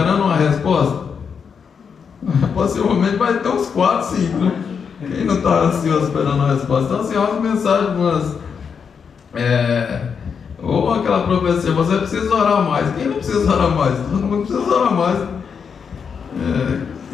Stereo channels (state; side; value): quieter; right; 6.4 dB